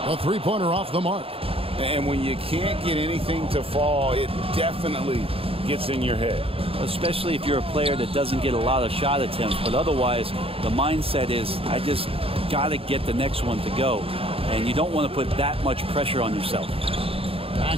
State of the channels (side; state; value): left; late; 0.27 ms